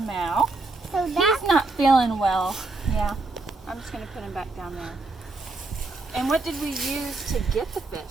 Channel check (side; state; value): left; quieter; 3.4 dB